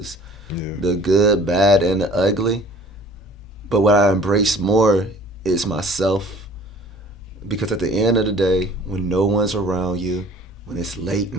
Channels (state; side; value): normal; both; correlation 0.50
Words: Yeah. the good, bad, and the ugly. But what I embrace more is myself. Because at the end of the day, when no one's around you, when it's late